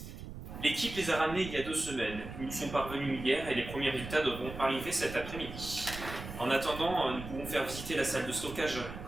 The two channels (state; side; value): noise; right; rumble, 10 dB below the sound